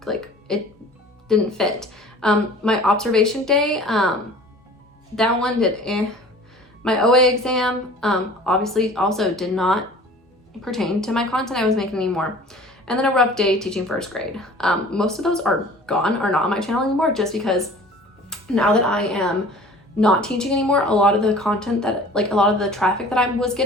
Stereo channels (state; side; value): normal; both; correlation 0.46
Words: like, it didn't fit. My observation day, that one did My OA exam, obviously also did not pertain to my content I was making anymore. And then a rough day teaching first grade. Most of those are gone, are not on my channel anymore, just because now that I am not teaching anymore, a lot of the content that, like a lot of the traffic that I was